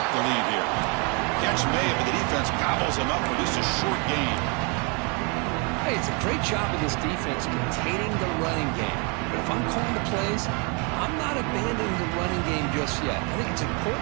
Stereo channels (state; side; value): quieter; left; 33.5 dB